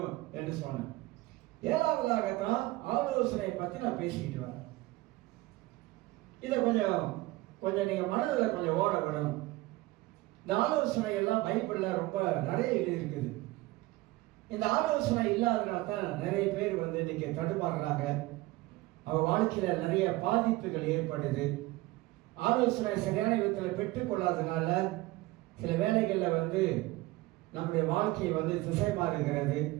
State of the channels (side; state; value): left; quieter; 19.5 dB